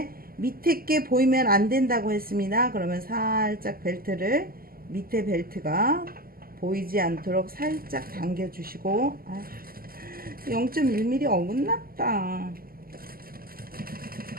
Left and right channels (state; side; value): late; left; 0.42 ms